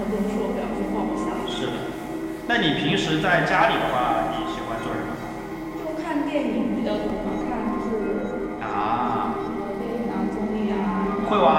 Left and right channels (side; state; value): both; identical; correlation 1.00